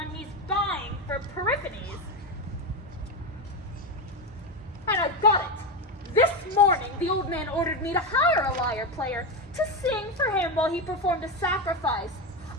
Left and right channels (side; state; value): both; normal; correlation 0.14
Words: he's buying for Periphetes. And I've got it. This morning, the old man ordered me to hire a liar player to sing for him while he performed a sacrifice.